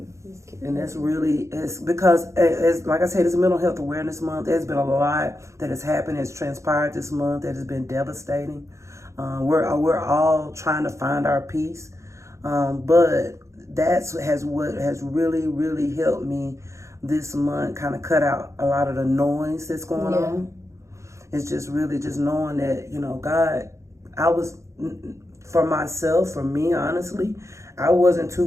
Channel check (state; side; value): late; left; 0.14 ms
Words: And it's because, like I said, it's Mental Health Awareness Month. There's been a lot that has happened, has transpired this month that has been devastating. We're all trying to find our peace, but what has really, really helped me this month, kind of cut out a lot of the noise that's going on. It's just really just knowing that, God, for myself, for me, honestly, I wasn't too